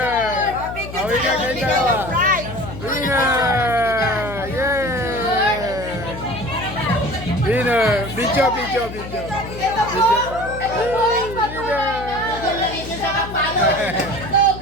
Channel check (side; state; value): left; noise; hum, 11 dB below the sound